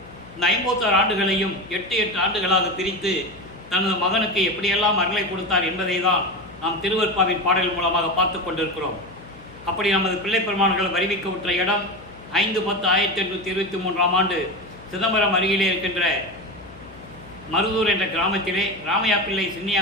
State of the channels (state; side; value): noise; left; hum, 21 dB below the sound